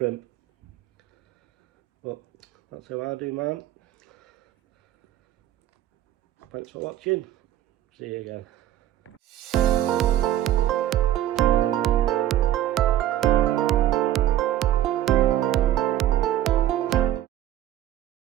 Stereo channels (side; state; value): left; quieter; 12.6 dB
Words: But that's how I do mine. Thanks for watching. See you again.